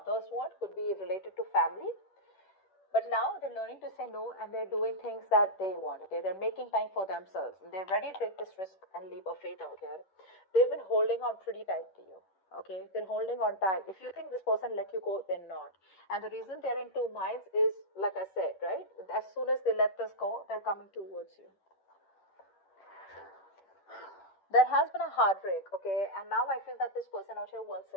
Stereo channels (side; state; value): right; late; 10 ms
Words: want, could be related to family. But now they're learning to say no, and they're doing things that they want. Okay, they're making time for themselves, and they're ready to take this risk and leap of faith out here. They've been holding on pretty tight to you. Okay, they're holding on tight. If you think this person let you go, they're not. And the reason they're in two minds is, like I said, right? As soon as they let this go, they're coming towards you. There has been a heartbreak, okay, and now I feel that this person out here wants